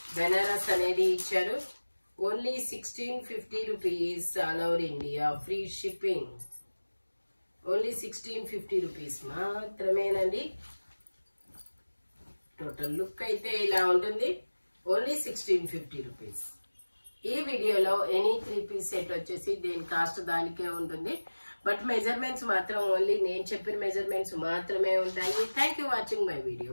బెనారస్ అనేది ఇచ్చారు. Only 1650 rupees. All over India free shipping. Only 1650 rupees మాత్రమేనండి. టోటల్ లుక్ అయితే ఇలా ఉంటుంది. Only 1650 rupees. ఈ వీడియోలో ఎనీ 3 పీస్ సెట్ వచ్చేసి దేని కాస్ట్ దానికే ఉంటుంది. బట్ మెజర్మెంట్స్ మాత్రం ఓన్లీ నేను చెప్పిన మెజర్మెంట్స్ మాత్రమే ఉంటాయి. Thank you watching my video.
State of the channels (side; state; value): both; inverted; correlation -1.00